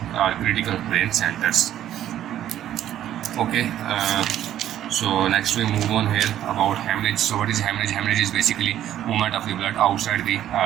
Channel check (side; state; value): left; quieter; 11.7 dB